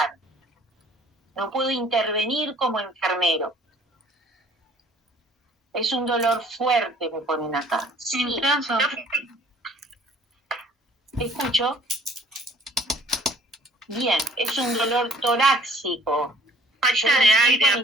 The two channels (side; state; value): both; normal; correlation 0.55